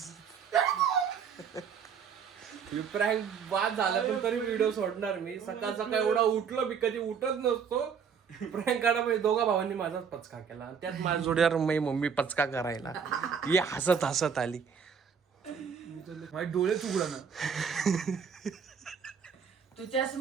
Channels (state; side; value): quieter; left; 6.8 dB